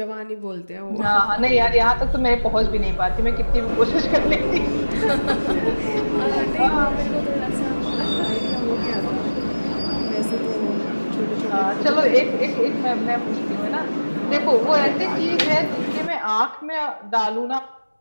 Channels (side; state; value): both; inverted; correlation -1.00